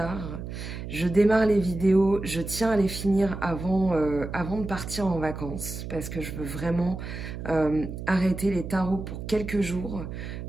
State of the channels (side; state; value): right; noise; hum, 8 dB below the sound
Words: Je démarre les vidéos, je tiens à les finir avant de partir en vacances parce que je veux vraiment arrêter les tarots pour quelques jours